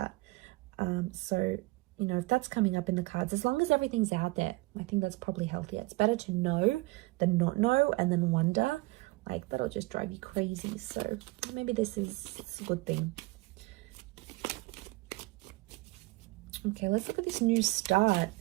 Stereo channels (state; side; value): quieter; left; 22.4 dB